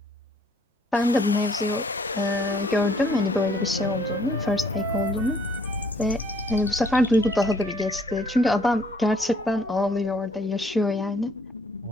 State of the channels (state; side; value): normal; both; correlation 0.63